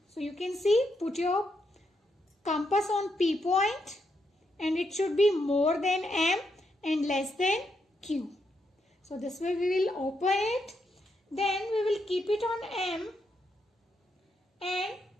So you can see, put your compass on P point and it should be more than M and less than Q. So this way we will open it. Then we will keep it on M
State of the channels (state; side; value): normal; both; correlation 0.80